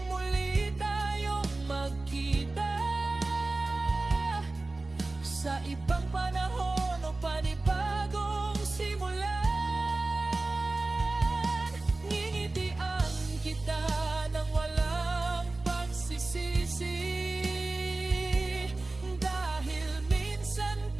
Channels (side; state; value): left; quieter; 3.1 dB